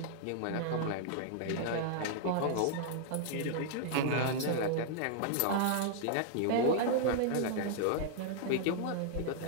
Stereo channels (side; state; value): both; different; correlation -0.01